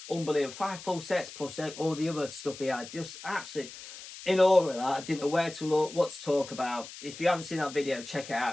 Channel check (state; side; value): noise; left; hiss, 14 dB below the sound